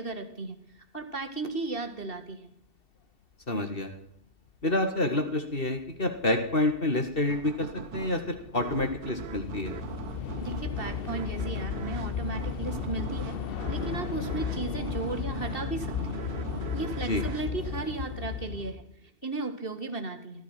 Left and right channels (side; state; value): right; late; 2.7 ms